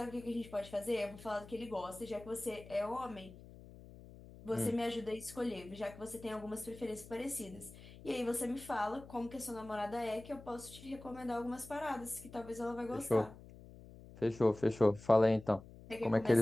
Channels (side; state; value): left; noise; hum, 18 dB below the sound